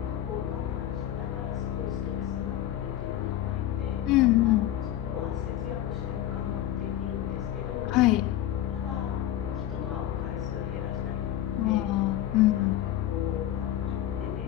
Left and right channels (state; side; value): quieter; right; 12.5 dB